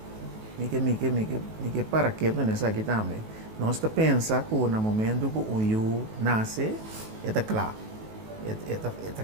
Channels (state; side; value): late; left; 19 ms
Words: Mike para que não nessa aqui também. Nós pensa que no momento que o eu nasce, eta claro. Eta